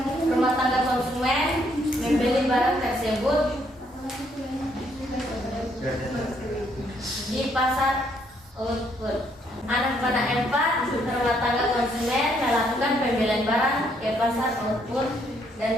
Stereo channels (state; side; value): normal; both; correlation 0.70